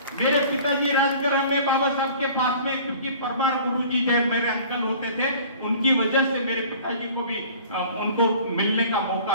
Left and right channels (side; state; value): both; inverted; correlation -0.47